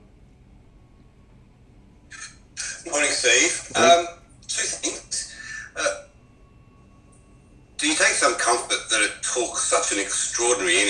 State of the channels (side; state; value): both; identical; correlation 1.00